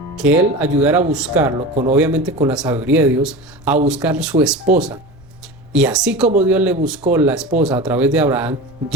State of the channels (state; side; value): noise; right; rumble, 26 dB below the sound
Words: que él ayudara a buscarlo, obviamente con la sabiduría de Dios, a buscar su esposa. Y así como Dios le buscó la esposa a través de Abraham,